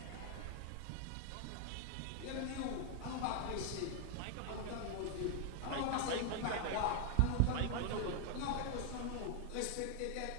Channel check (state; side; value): different; both; correlation 0.00